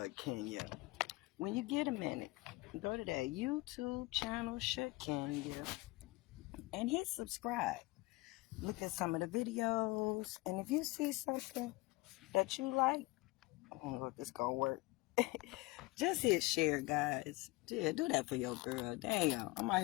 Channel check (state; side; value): quieter; right; 21.8 dB